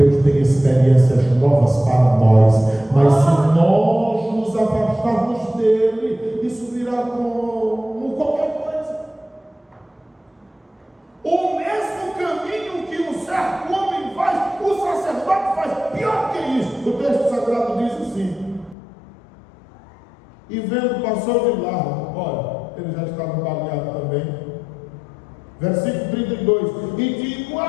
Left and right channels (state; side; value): drops out; right; at 18.8 s